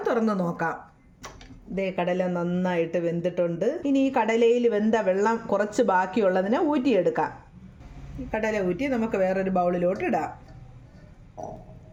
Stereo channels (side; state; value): both; identical; correlation 1.00